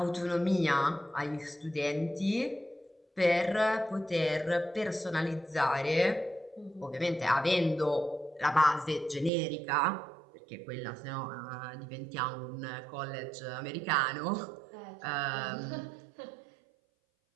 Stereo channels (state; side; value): drops out; left; at 9.3 s